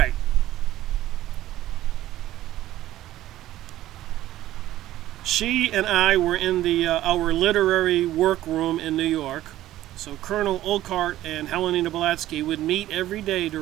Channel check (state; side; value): quieter; left; 14.3 dB